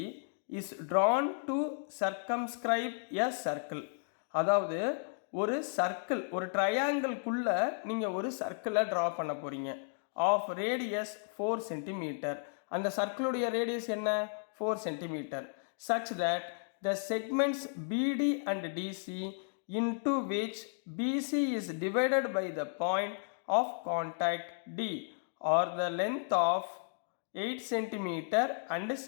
is drawn to circumscribe a circle. அதாவது ஒரு சர்க்கிள், ஒரு ட்ரையாங்கிள்குள்ள நீங்கள் ஒரு சர்க்கிளை ட்ரா பண்ண போகிறீங்க. Of radius 4 centimetre. அந்த சர்க்கிளுடைய ரேடியஸ் என்ன? 4 centimetre. such that the segments BD and DC into which BC is divided by the point of contact D are the length of 8 centimetre and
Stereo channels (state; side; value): silent; right; digital silence